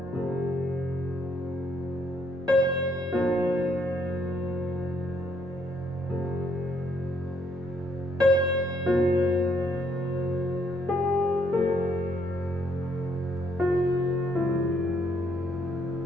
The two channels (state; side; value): normal; both; correlation 0.69